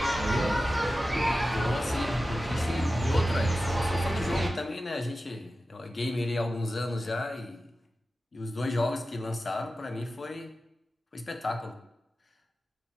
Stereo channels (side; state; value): both; normal; correlation 0.94